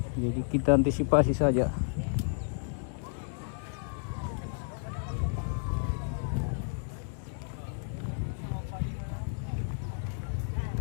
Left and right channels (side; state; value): right; silent; digital silence